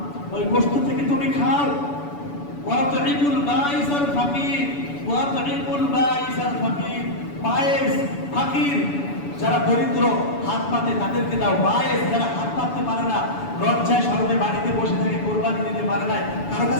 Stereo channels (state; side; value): late; right; 7.0 ms